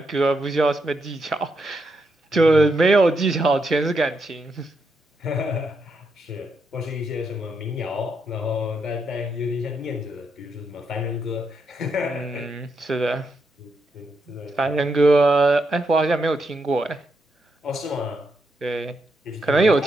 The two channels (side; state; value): both; normal; correlation 0.81